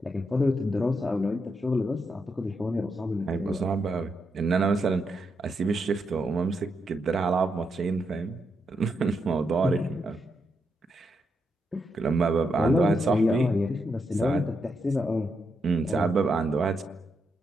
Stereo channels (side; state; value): both; normal; correlation 0.81